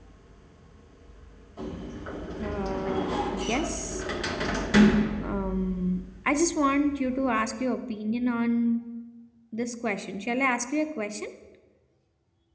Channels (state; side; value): identical; both; correlation 1.00